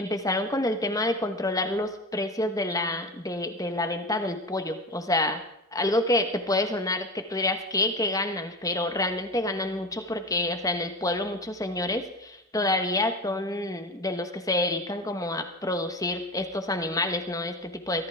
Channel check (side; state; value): both; normal; correlation 0.27